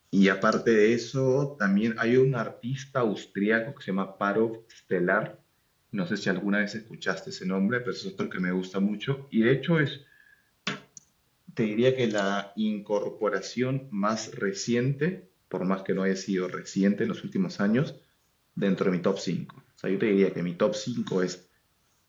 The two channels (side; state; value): both; identical; correlation 1.00